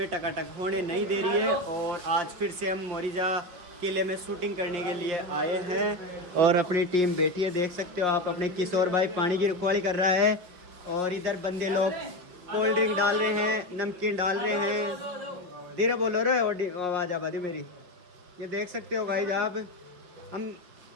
टकाटक होने नहीं दे रही है। और आज फिर से हम मोरिजा किले में शूटिंग करने के लिए आए हैं और अपनी टीम बैठी है, देख सकते हो आप। अपने किशोर भाई पानी की रखवाली कर रहा है और इधर बंदे लोग कोल्ड ड्रिंक डाल रहे हैं, नमकीन डाल रहे हैं। धीरे बोलो रे, आवाज़ आबादी मेरी। ये देख सकते हो भाई आप, हम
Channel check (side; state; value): left; late; 5.4 ms